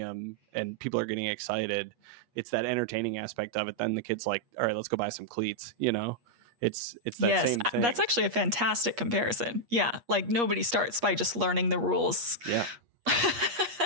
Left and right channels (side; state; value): left; late; 8.4 ms